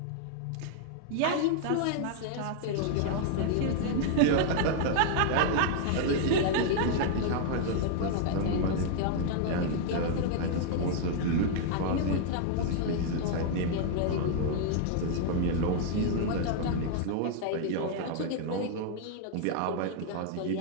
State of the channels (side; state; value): both; different; correlation 0.00